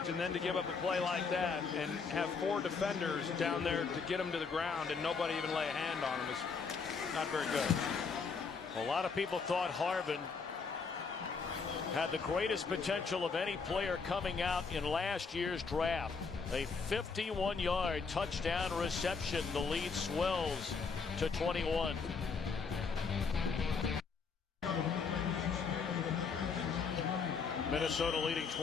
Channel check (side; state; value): right; quieter; 5.2 dB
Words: and then to give up a play like that and have four defenders down there to get him to the ground and nobody even lay a hand on him is not very good. A lot of people thought Harvin had the greatest potential of any player coming out in last year's draft. A 51-yard touchdown reception. The lead swells to 21. Minnesota leading